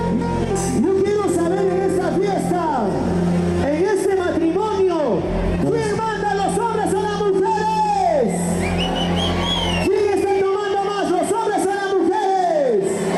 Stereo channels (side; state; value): both; identical; correlation 1.00